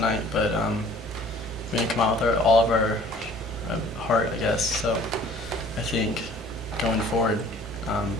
but we didn't come out with all of our heart, I guess. So I think going forward,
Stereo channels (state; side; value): normal; both; correlation 0.52